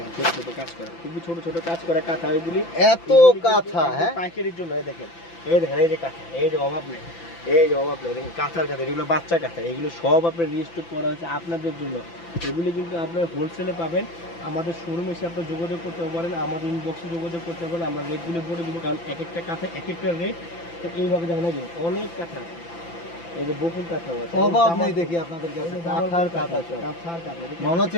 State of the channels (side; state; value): right; late; 5.9 ms